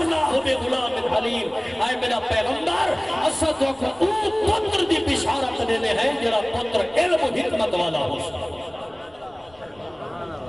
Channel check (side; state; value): left; noise; rumble, 29 dB below the sound